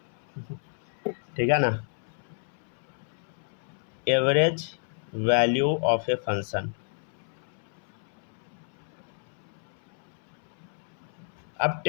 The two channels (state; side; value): silent; right; 58 dB below the other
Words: ठीक है ना? Average value of a function. अब